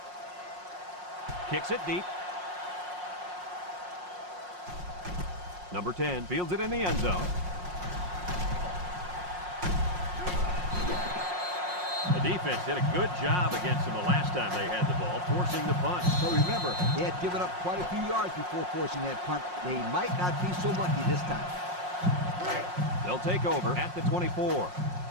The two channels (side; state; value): left; late; 5.5 ms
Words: Kicks it deep. Number 10 fields it in the end zone. The defense did a good job against them the last time they had the ball, forcing the punt. But remember, they had given up quite a few yards before forcing that punt. They might not be so lucky this time. They'll take over at the 24.